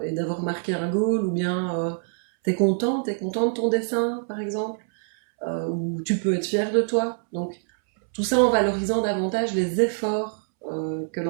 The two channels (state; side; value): silent; left; 62 dB below the other